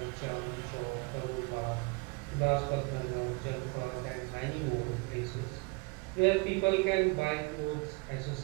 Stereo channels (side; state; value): left; quieter; 29.2 dB